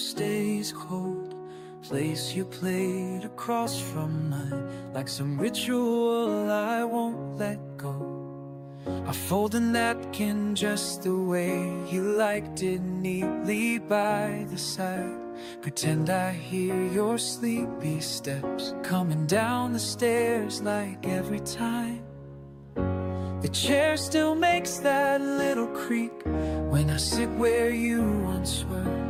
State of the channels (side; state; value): both; identical; correlation 1.00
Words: cold. Place your plate across from mine, like some ritual I won't let go. I fold a napkin just the way you liked it, neatly by the side. Pretend I hear your sleepy steps coming down the stairs like every time. The chair still makes that little creak when I sit where you once were.